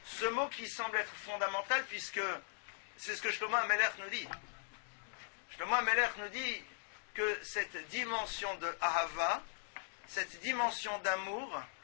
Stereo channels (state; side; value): silent; right; digital silence